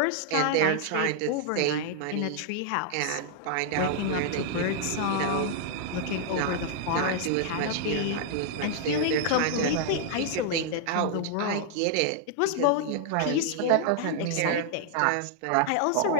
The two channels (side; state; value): both; different; correlation -0.01